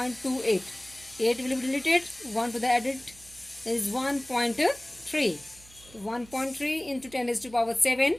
8 will be deleted, 1 to the added is 1.3. 1.3 into 10 is to power 7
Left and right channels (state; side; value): noise; right; hum, 23 dB below the sound